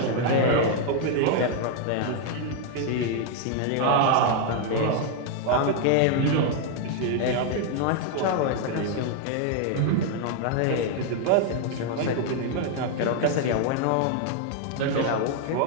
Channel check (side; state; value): both; different; correlation 0.00